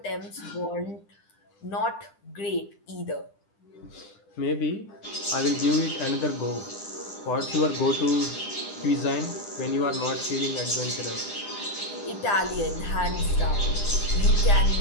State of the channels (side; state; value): right; late; 9.9 ms